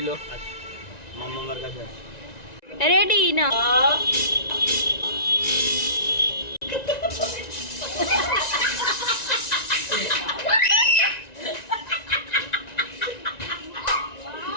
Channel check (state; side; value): late; right; 1.9 ms